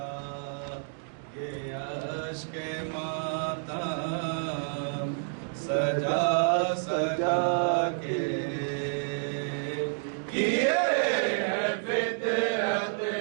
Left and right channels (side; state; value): left; silent; digital silence